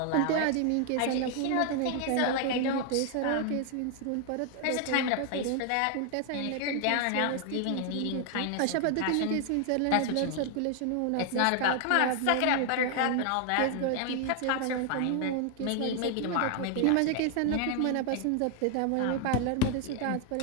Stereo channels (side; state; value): both; different; correlation 0.00